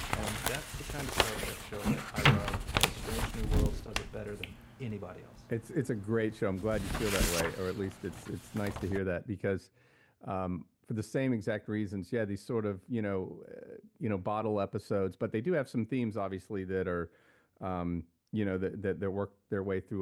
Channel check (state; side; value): identical; both; correlation 1.00